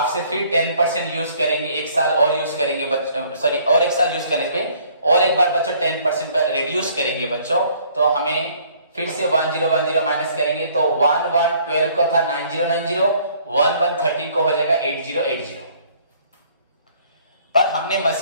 फिर 10% यूज करेंगे, एक साल और यूज करेंगे बच्चों, सॉरी और एक साल यूज करने पे और एक बार बच्चों 10% पर रिड्यूस करेंगे बच्चों, तो हमें फिर से 1010 माइनस करेंगे तो 1/1/12 को था 9090, 1/1/13 को हो जाएगा 8080। पर हमने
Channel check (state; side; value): inverted; both; correlation -0.59